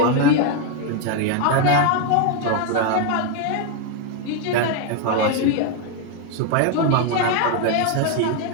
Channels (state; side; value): different; both; correlation 0.01